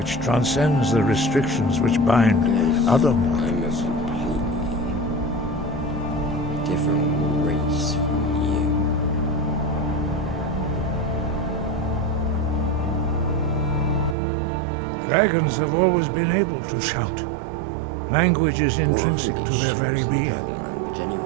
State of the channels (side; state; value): left; drops out; at 14.2 s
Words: transcends the restrictions which bind other mortals. Different race from you. Dragons have always been able to shout. Language is intrinsic to their very being.